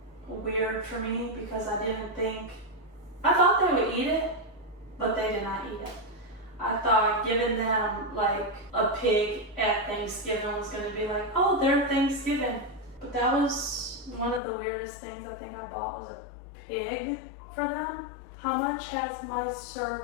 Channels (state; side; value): drops out; right; at 14.4 s